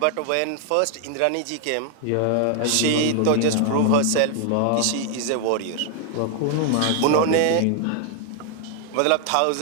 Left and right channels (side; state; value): both; different; correlation 0.00